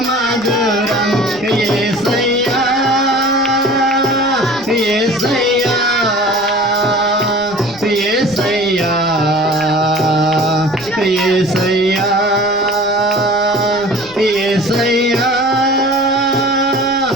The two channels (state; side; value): noise; left; rumble, 24 dB below the sound